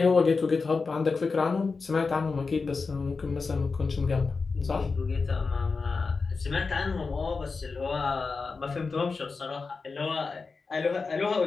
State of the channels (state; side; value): quieter; right; 4.4 dB